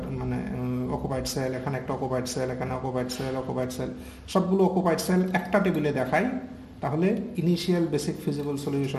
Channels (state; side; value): identical; both; correlation 1.00